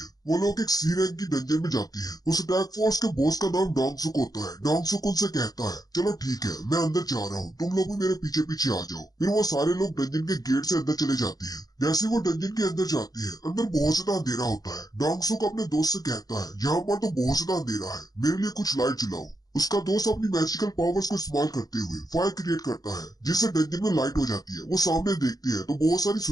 वो लोग एक सी रैंक की डंजन में जाते हैं। उस अटैक फोर्स के बॉस का नाम डोंगसुक होता है। डोंगसुक उनसे कहता है चलो ठीक है, मैं अंदर जा रहा हूँ, तुम लोग भी मेरे पीछे पीछे आ जाओ। फिर वो सारे लोग डंजन के गेट से अंदर चले जाते हैं। जैसे वो डंजन के अंदर जाते हैं, अंदर बहुत ज्यादा अंधेरा होता है। डोंगसुक अपने दोस्त से कहता है यहाँ पर तो बहुत ज्यादा अंधेरा है, मेरे लिए कुछ लाइट जलाओ। उसका दोस्त अपनी मैजिकल पावर्स को इस्तेमाल करते हुए फायर क्रिएट करता है, जिससे डंजन में लाइट हो जाती है। वो सामने देखते हैं तो बहुत सारी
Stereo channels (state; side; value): late; right; 0.18 ms